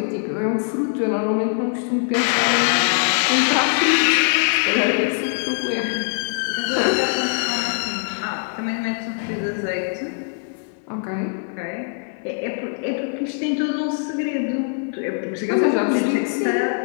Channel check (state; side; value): silent; right; 64 dB below the other